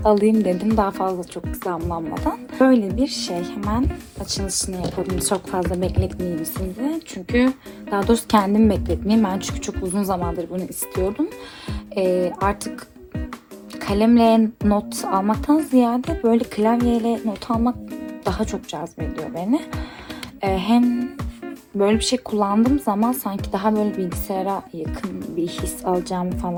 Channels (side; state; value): both; identical; correlation 1.00